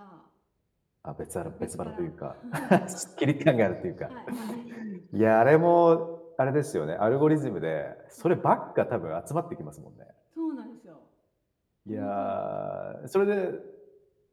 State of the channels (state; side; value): identical; both; correlation 1.00